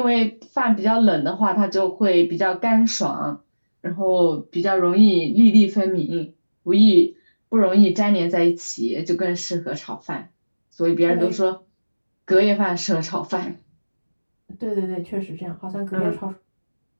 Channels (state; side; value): inverted; both; correlation -1.00